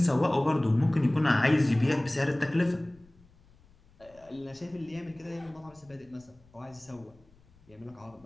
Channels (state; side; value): noise; left; rumble, 29 dB below the sound